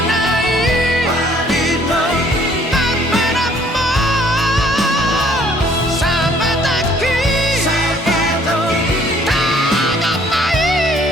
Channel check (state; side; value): normal; both; correlation 0.60